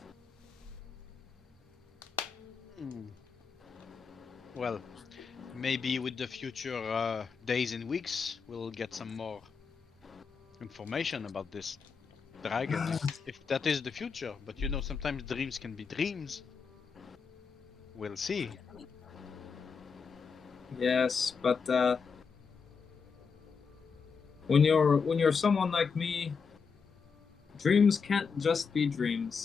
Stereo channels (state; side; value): quieter; right; 5.6 dB